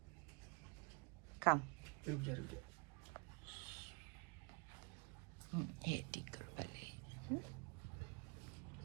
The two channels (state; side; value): quieter; left; 32.4 dB